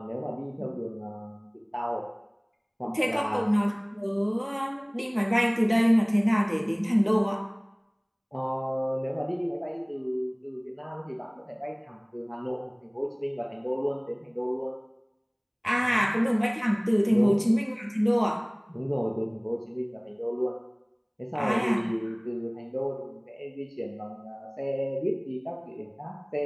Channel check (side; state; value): both; identical; correlation 1.00